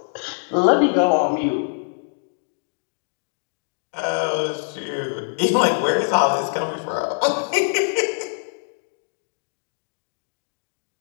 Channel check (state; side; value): silent; right; digital silence